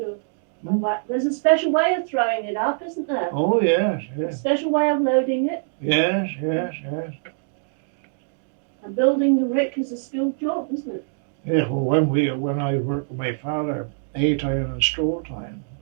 There's a special way of throwing it up, isn't there? Oh, yes. A special way of loading it. Yes. And building the rick is a skilled job, isn't it? Yeah, well, when I worked with my father, hay time and straw time,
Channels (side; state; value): left; silent; digital silence